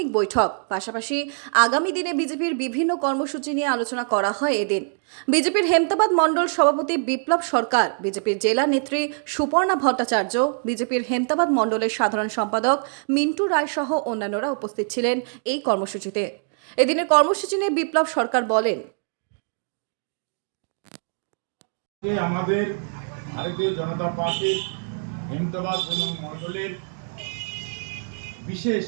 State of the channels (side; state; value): left; silent; 63 dB below the other